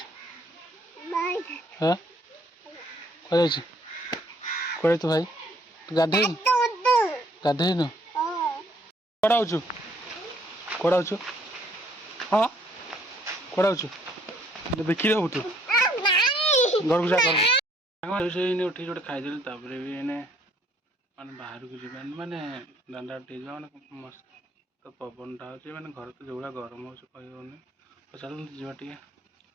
हाँ कह कहे तो भाई गाधे गाधेनु कड़ा हाँ कड़ा बिक्री हबू तू घर को जा उठी जो खाईदेली भी एने माने बाहर को जी माने दांडा माने मस्त तो पवन टा हो माने घर तो जो गरम हो कहनी तो चल जा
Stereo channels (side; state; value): both; normal; correlation 0.64